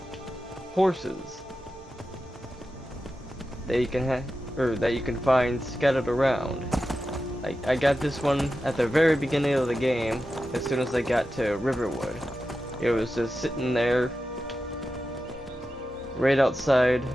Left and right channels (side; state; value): both; normal; correlation 0.91